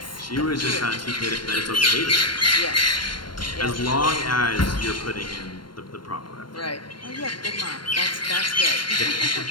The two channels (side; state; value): right; late; 0.72 ms